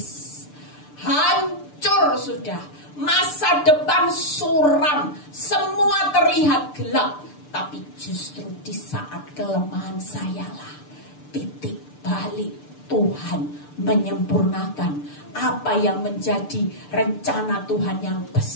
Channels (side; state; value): right; late; 6.8 ms